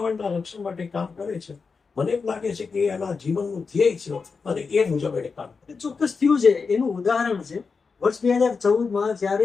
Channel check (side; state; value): right; quieter; 5.0 dB